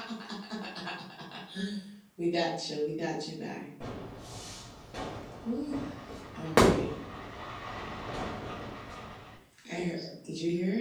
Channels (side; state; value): both; identical; correlation 1.00